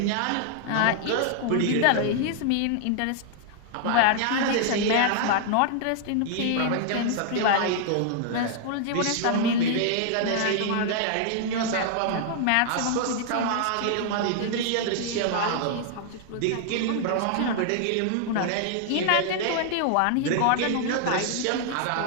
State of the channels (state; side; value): different; both; correlation 0.00